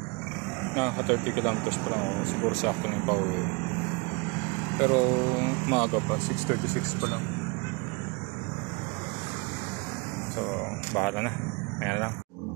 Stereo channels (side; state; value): left; quieter; 29.2 dB